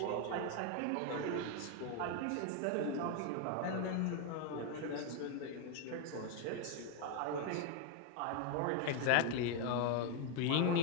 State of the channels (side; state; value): both; different; correlation 0.01